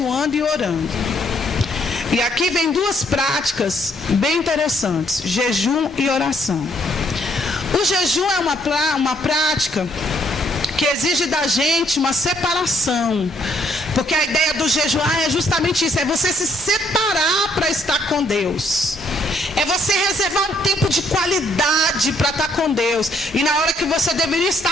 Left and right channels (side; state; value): both; normal; correlation 0.69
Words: e orando. E aqui vem duas práticas bem interessantes: jejum e oração. O jejum é uma prática que exige da gente uma separação. Porque a ideia do jejuar é justamente isso, é você se separar para estar com Deus. É você reservar um tempo de qualidade para estar com Deus. E na hora que você deveria